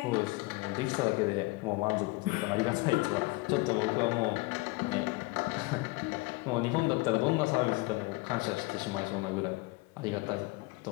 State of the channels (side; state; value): right; quieter; 23.4 dB